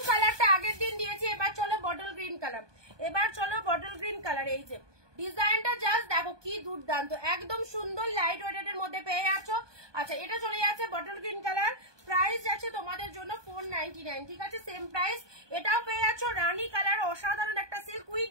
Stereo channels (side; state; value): left; late; 1.2 ms